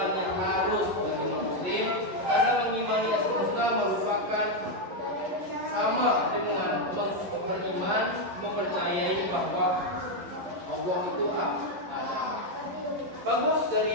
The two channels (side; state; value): left; late; 11 ms